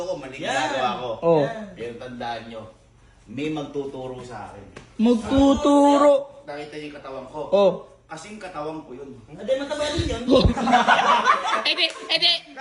mali Yan. ginagawa ko. Oh. Pero tandaan nyo, may magtuturo sa akin. Magtuturo. Nakita niyo yung katawan ko. Oh. Kasing katawan ko yun. Hindi, mataba din yun. Ede.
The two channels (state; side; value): identical; both; correlation 1.00